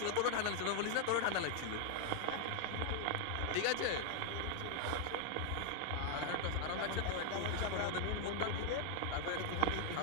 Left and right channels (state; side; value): different; both; correlation 0.00